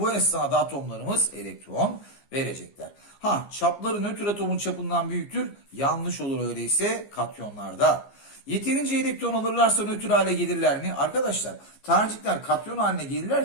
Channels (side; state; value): right; late; 15 ms